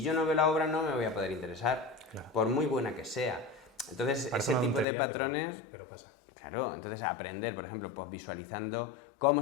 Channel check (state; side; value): drops out; right; at 4.9 s